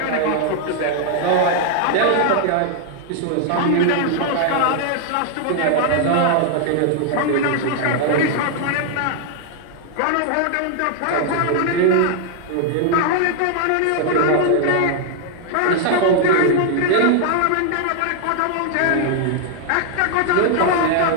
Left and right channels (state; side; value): different; both; correlation 0.00